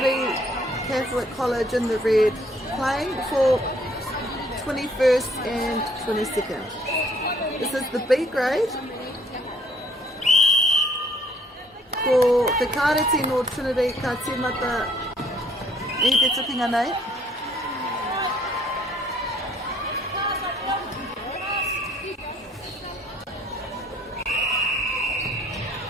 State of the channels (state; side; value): normal; both; correlation 0.62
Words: Catholic College in the red. Playing for 21st and 22nd. This is the B grade. Ko te kāreti no Trinity ka tīmata I te tukinga nei.